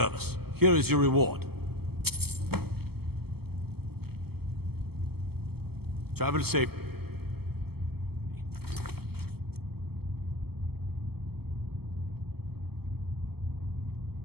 Here is your reward. Travel safe.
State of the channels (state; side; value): late; left; 0.96 ms